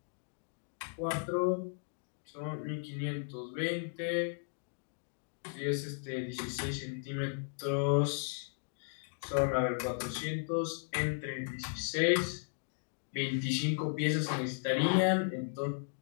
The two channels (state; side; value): silent; right; digital silence